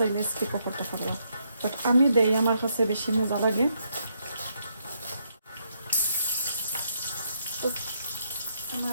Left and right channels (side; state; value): both; inverted; correlation -0.76